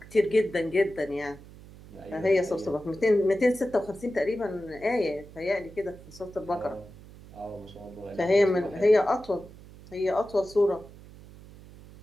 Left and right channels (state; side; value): noise; right; hum, 19 dB below the sound